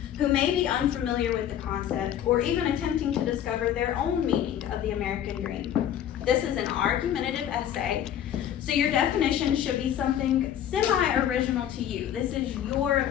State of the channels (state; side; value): quieter; right; 10.3 dB